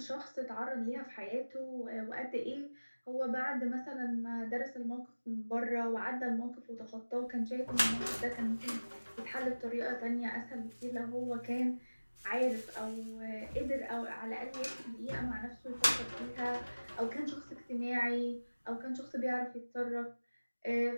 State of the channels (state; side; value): inverted; both; correlation -1.00